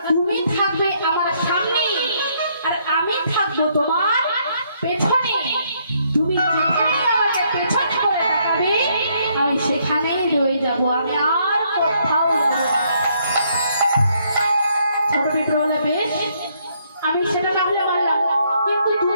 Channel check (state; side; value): inverted; both; correlation -0.70